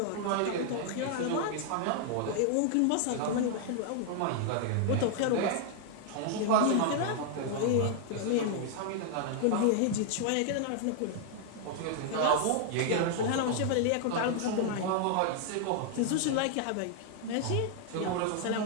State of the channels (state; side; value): different; both; correlation 0.00